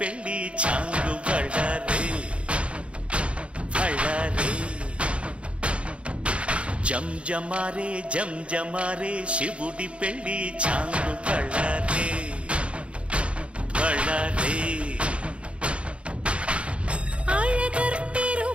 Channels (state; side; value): late; left; 0.060 ms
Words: చాంగు బళ్ళారే బళ్ళారే జంజమారే జంజమారే శివుడి పెళ్ళి చాంగు బళ్ళారే బళ్ళారే